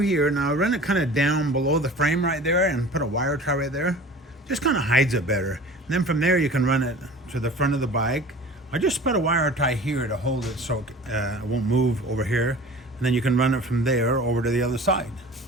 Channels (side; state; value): both; normal; correlation 0.41